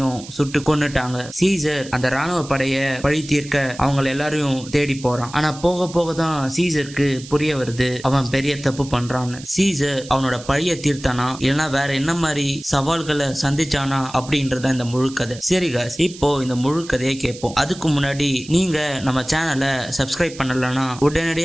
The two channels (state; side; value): noise; right; hiss, 16 dB below the sound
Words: சுட்டு கொன்னுட்டாங்க. சீசர் அந்த ராணுவ படைய பழி தீர்க்க அவங்க எல்லாரையும் தேடி போறான். ஆனா போக போக தான் சீசருக்கு புரிய வருது அவன் பெரிய தப்பு பண்றான்னு. சீசர் அவனோட பழைய தீர்த்தானா இல்லைன்னா வேற என்ன மாதிரி சவால்களை சந்திச்சானா அப்படின்றத இந்த முழு கதை. சரி காய்ஸ், இப்போ இந்த முழு கதையை கேட்போம். அதுக்கு முன்னாடி நீங்க நம்ம சேனலை சப்ஸ்கிரைப் பண்ணலன்னா